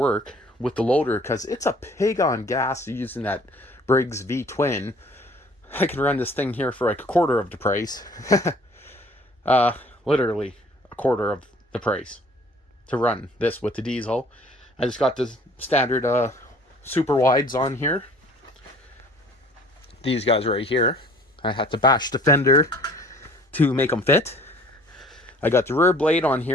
with the loader, because it's a pig on gas using that Briggs V-twin. I can run this thing here for like a quarter of the price. Literally a quarter of the price to run this with the diesel. I just got the standard super wides on here. These guys right here. I had to bash the fender to make them fit. I got the rear blade on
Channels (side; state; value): both; normal; correlation 0.53